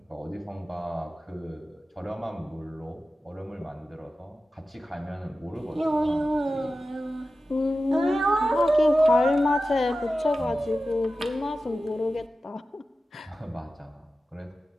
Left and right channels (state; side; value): normal; both; correlation 0.94